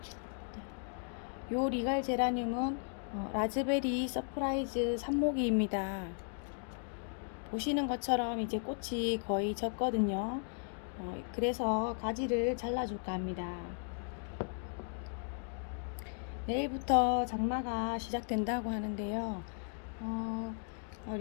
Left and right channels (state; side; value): silent; right; 54 dB below the other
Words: 요 리갈 제라늄은 라즈베리 서프라이즈 삽목이입니다. 보시는 것처럼 이제 꽃이 거의 졌거든요. 그래서 가지를 잘라줄까 합니다. 내일부터 장마가 시작된다고 하는데요.